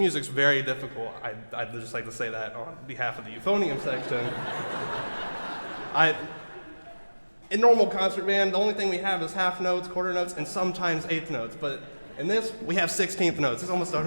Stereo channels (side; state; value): both; inverted; correlation -1.00